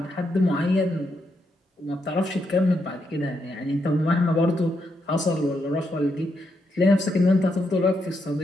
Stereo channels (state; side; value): normal; both; correlation 0.80